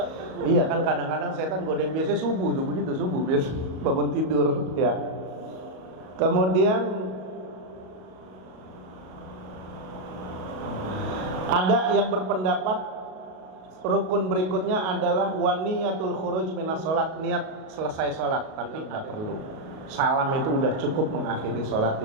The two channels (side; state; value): left; late; 38 ms